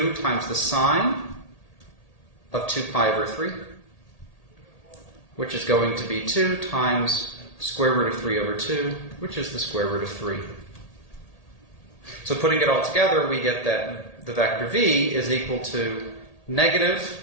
times the sine of 2 pi over 3, which is going to be 2 times square root of 3 over 2, which is the square root of 3. So putting it all together, we get that the vector v is equal to negative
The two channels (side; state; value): right; late; 1.8 ms